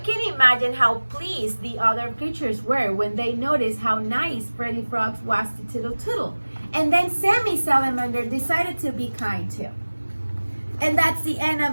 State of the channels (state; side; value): inverted; both; correlation -1.00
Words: can imagine how pleased the other creatures were when they noticed how nice Freddy Frog was to Toodle Toodle. And then Sammy Salamander decided to be kind too. And that's the end